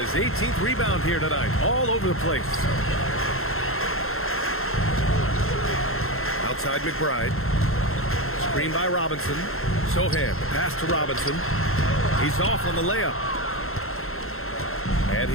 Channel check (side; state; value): right; late; 0.62 ms